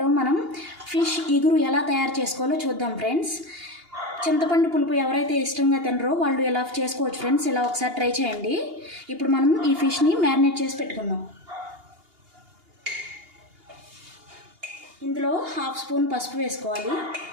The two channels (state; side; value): late; left; 2.8 ms